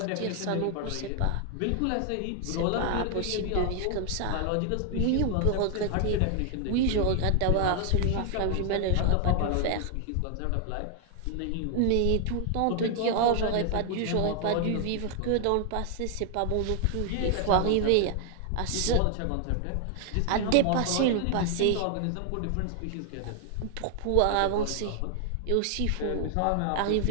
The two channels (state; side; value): different; both; correlation 0.00